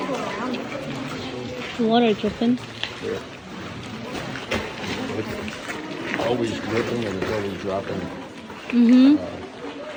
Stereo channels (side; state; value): both; identical; correlation 1.00